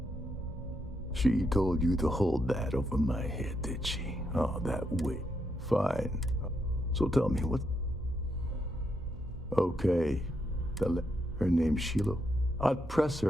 She told you to hold that over my head, did she? Oh, that way. Fine. So tell me, what... Okay. Her name's Sheila. I'd press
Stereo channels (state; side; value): normal; both; correlation 0.80